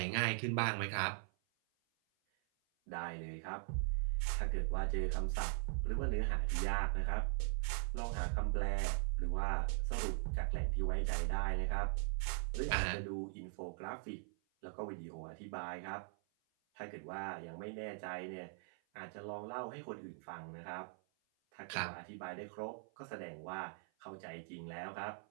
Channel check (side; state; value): left; silent; 50 dB below the other